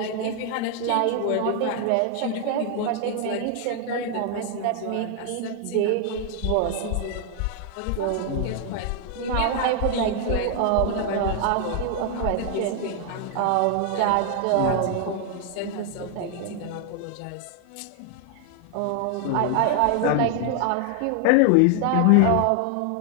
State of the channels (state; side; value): different; both; correlation 0.00